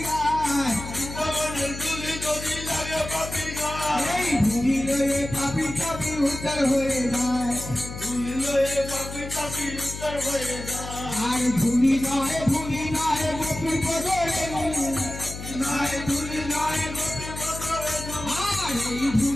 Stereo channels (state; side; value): noise; left; hum, 9 dB below the sound